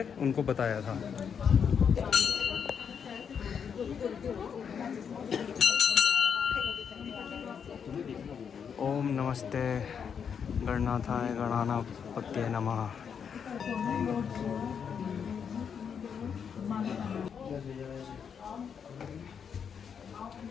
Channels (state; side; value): quieter; right; 7.1 dB